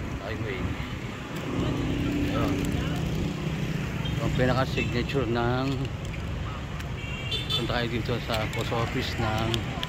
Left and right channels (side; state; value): both; identical; correlation 1.00